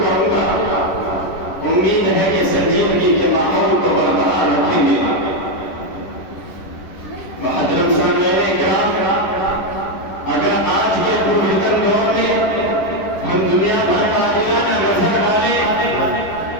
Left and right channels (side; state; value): right; late; 11 ms